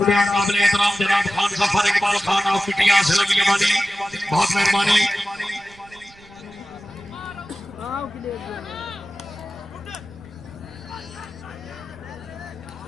हैं काबिल एहतराम जनाब खान सफर इकबाल खान ऑफ पिटिया सलमिया वाली, बहुत मेहरबानी।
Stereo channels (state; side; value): noise; right; rumble, 26 dB below the sound